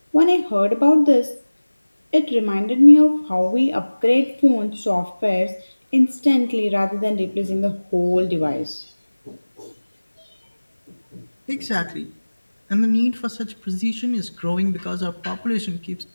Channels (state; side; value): inverted; both; correlation -1.00